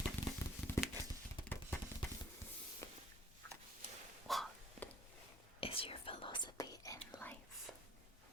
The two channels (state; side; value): normal; both; correlation 0.56